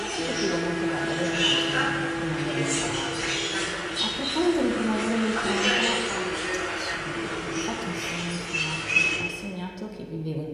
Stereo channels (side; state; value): both; identical; correlation 1.00